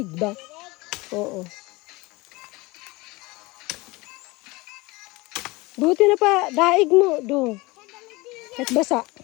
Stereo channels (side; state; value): right; quieter; 23.0 dB